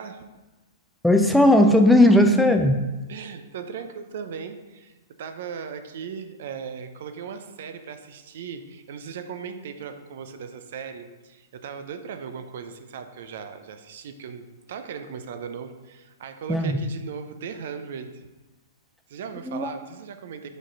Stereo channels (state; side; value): normal; both; correlation 0.57